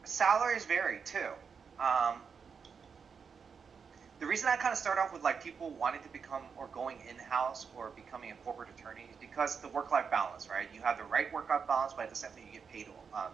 salaries vary too. The reason I kind of start off with like people wanting to become or going in-house or becoming a corporate attorney is because the work-life balance, right? You have the right work-life balance, but at the same time you get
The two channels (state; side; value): quieter; left; 6.1 dB